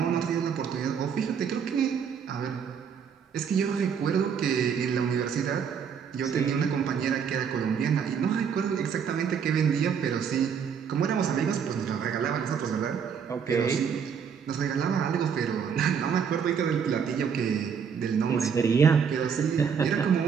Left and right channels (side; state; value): left; quieter; 7.0 dB